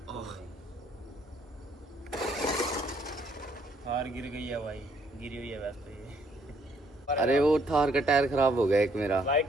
थार गिर गई है भाई, गिरी हुई है वैसे ये। अरे वो थार का टायर खराब हो गया एक मेरा। भाई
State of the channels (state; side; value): normal; both; correlation 0.68